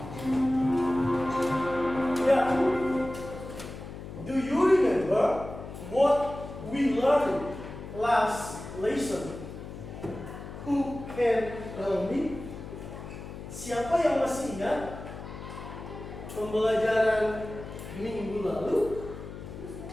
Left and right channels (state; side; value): noise; left; hum, 11 dB below the sound